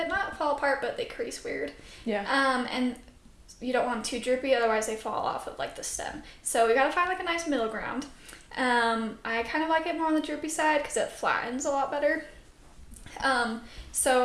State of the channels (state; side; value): identical; both; correlation 1.00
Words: Not fall apart, but they crease weird. Yeah. And you don't want them too droopy, otherwise they fall off of like the stem. So we gotta find like a nice middle ground. I kind of like it more on the droopy side because it flattens a lot better.